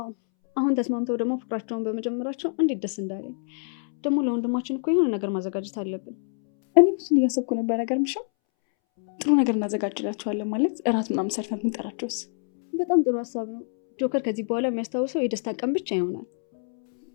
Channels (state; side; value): silent; right; 61 dB below the other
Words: አሁን ተስማምተው ደግሞ ፍቅራቸውን በመጀመራቸው እንዴት ደስ እንዳለኝ። ደግሞ ለወንድማችን እኮ የሆነ ነገር ማዘጋጀት አለብን። እኔ ብዙን እያሰብኩ ነበር። ነገር ምሽም ጥሩ ነገር እናዘጋጅላቸዋለን ማለት እራት ምናምን ሰርተን ብንጠራቸውስ? በጣም ጥሩ ሀሳብ ነው። ጆከር ከዚህ በኋላ የሚያስታውሰው የደስታ ቀን ብቻ ይሆናል።